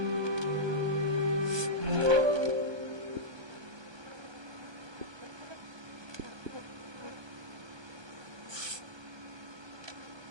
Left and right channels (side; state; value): left; late; 1.2 ms